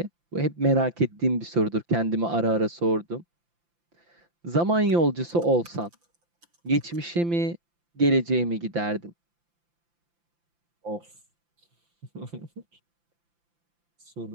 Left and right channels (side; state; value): left; late; 5.8 ms